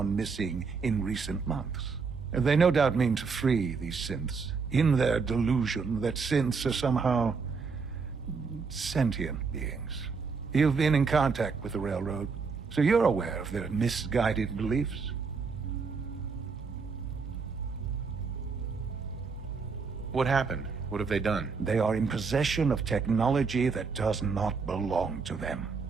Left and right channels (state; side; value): quieter; left; 5.0 dB